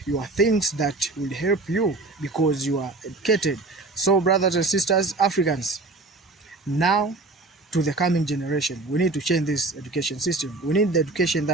your things that will help you because you are educated. So, brothers and sisters, Africans, now to the coming generation, we need to change this education system. We need the education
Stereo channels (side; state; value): left; quieter; 3.3 dB